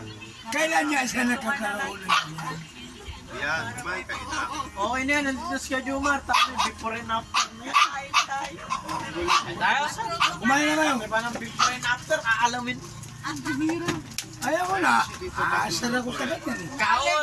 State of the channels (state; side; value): identical; both; correlation 1.00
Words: Kailan niya siya nagkakaroon ng ganyan? Yan, kumain kayo na. Okay na yan, nandito si Kuya Jumar, tapos before and after na yan. Tayo sa Kumain na kayo. Diba ng before and after, aalamin. Ayaw ko na. Aasar ako sa ganyan eh.